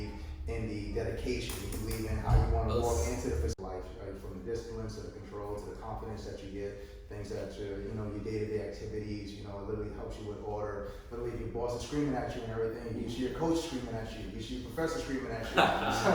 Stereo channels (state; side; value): identical; both; correlation 1.00